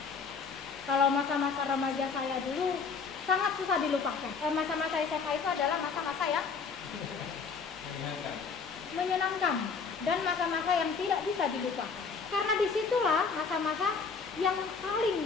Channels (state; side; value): quieter; right; 5.2 dB